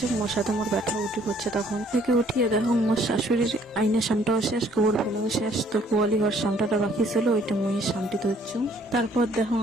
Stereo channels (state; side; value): normal; both; correlation 0.62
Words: মোর সাথে মোর ব্যথা উঠি পড়ছে। তখন থেকে উঠিয়ে দেখো মোর শাশুড়ির আইনের সামটাও শেষ, গোবর ফেলাও শেষ। তো গোয়ালি ঘর সামটাটা বাকি ছিল, ওইটা মুই সামটি ধরছু। তারপর দেখো